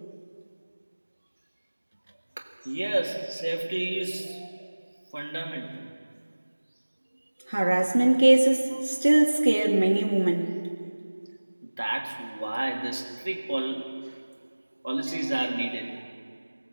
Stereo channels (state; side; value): inverted; both; correlation -1.00